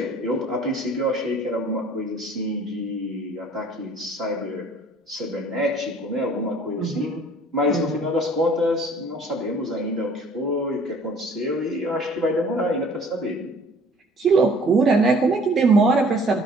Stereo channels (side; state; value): both; normal; correlation 0.53